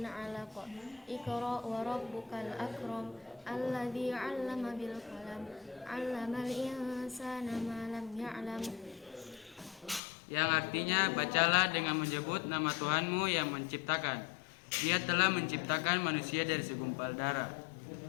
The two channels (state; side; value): drops out; right; at 10.0 s